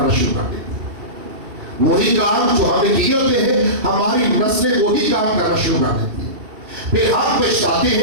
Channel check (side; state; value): left; late; 2.7 ms